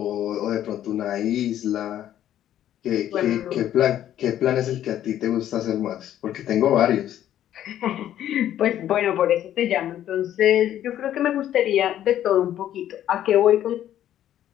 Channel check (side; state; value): right; quieter; 11.6 dB